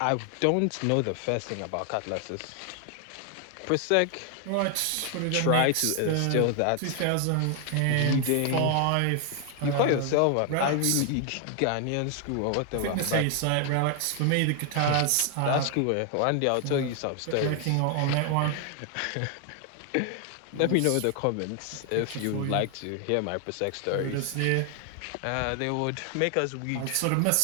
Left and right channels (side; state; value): both; different; correlation 0.00